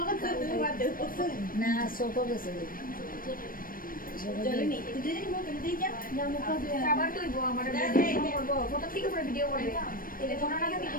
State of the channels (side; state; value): right; late; 0.41 ms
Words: না সব গেছে খাবার তৈব আমার করবো প্রথম থেকে পুরো ভিডিও করবে তাহলে কোনো না আমি